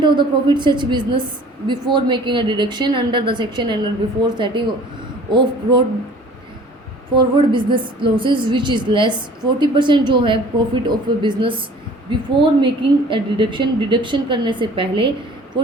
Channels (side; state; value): both; normal; correlation 0.49